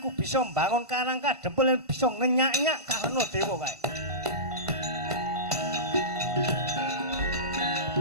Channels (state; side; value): late; left; 1.5 ms